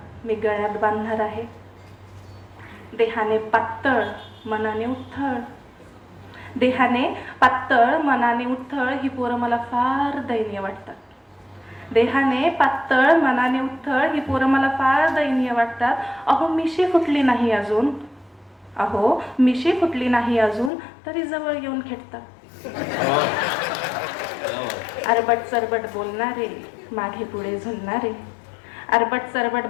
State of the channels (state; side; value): drops out; right; at 20.7 s